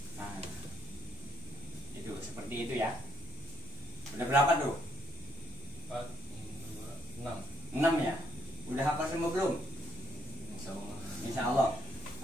Nah, itu seperti itu ya. Udah berapa tuh? 4, 5, 6. 6 ya? Udah hafal semua belum? Insya Allah.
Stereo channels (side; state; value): both; normal; correlation 0.71